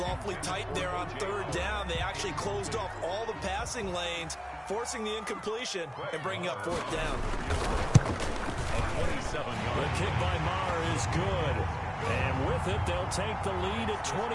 awfully tight there on third down. They actually closed off all the passing lanes, forcing the incompletion and bringing up fourth down. The kick by Maher is good. And with it, they'll take the lead at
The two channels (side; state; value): both; identical; correlation 1.00